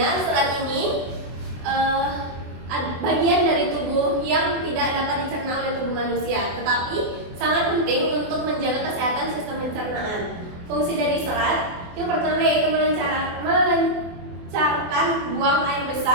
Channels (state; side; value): late; left; 24 ms